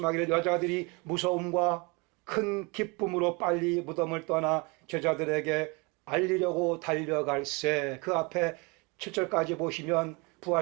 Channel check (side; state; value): left; quieter; 28.7 dB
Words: 여자들이 무서움과 큰 기쁨으로 빨리 무덤을 떠나 제자들에게 알리려고 달려갈새. 그 앞에 7절까지 보시면